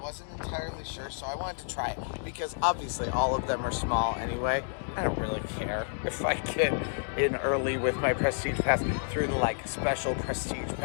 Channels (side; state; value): right; silent; 58 dB below the other